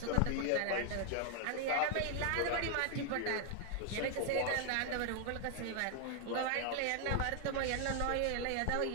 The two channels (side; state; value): both; different; correlation 0.00